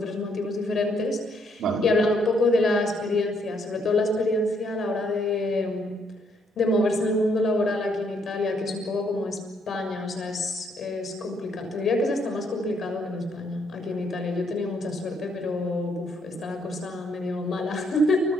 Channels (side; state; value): both; normal; correlation 0.71